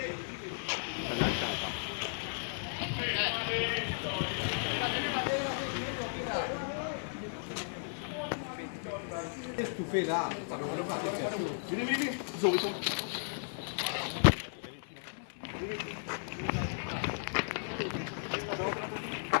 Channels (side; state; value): right; silent; 54 dB below the other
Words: Tu fais là. Vini. Zoom.